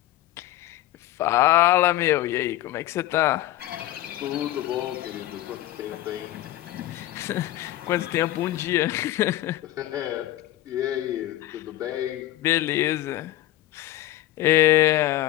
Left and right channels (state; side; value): quieter; right; 14.7 dB